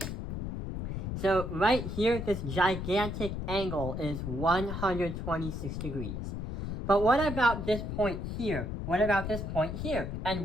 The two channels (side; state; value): left; noise; rumble, 4 dB below the sound